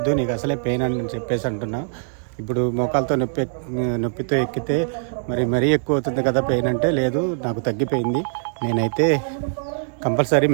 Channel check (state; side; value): silent; left; digital silence